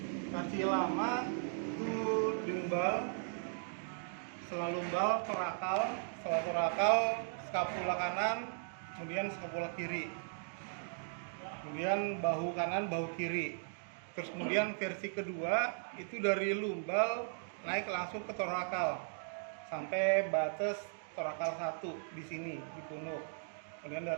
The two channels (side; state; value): left; silent; digital silence